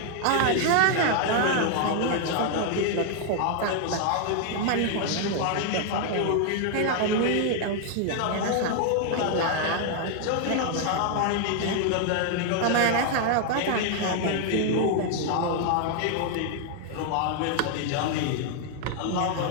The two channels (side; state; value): both; different; correlation 0.00